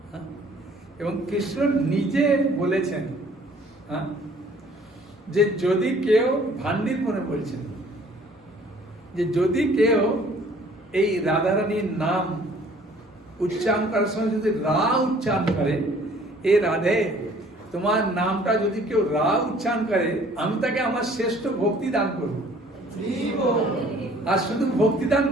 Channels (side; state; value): both; normal; correlation 0.55